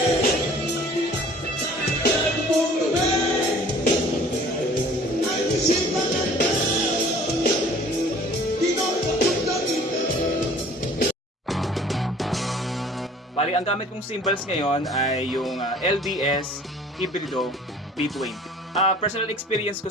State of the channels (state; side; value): normal; both; correlation 0.51